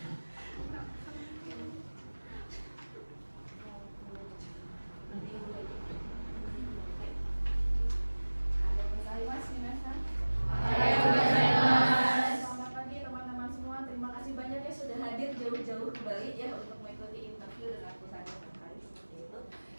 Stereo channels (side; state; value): both; inverted; correlation -1.00